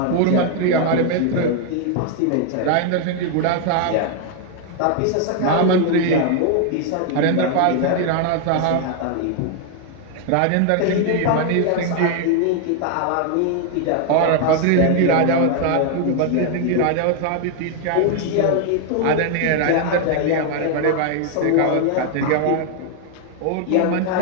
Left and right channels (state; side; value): different; both; correlation 0.00